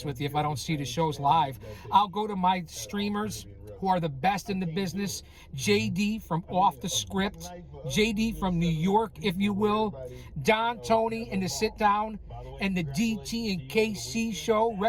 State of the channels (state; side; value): identical; both; correlation 1.00